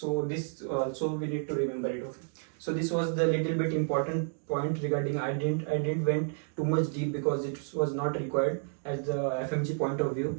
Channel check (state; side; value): silent; left; 57 dB below the other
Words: this also we need to remember it. Okay. So this was the little bit important point regarding. I didn't went too much deep because it was not required as the FMG point of